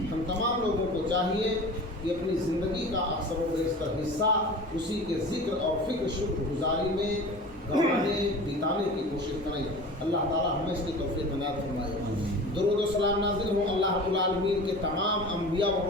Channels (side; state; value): both; normal; correlation 0.37